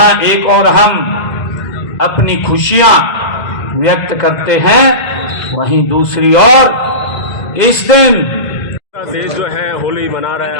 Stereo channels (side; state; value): right; late; 2.1 ms